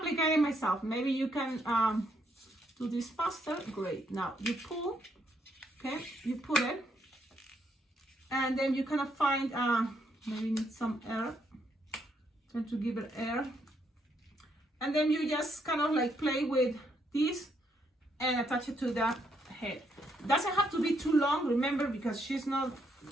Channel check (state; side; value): normal; both; correlation 0.74